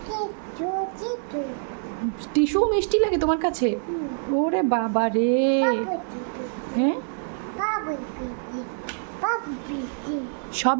টিস্যু মিষ্টি লাগে তোমার কাছে? ওরে বাবা রে। হ্যাঁ,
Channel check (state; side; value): silent; left; 61 dB below the other